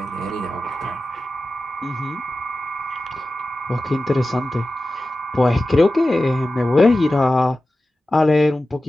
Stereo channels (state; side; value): normal; both; correlation 0.94